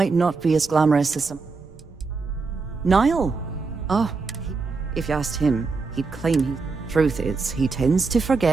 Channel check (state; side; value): quieter; left; 4.3 dB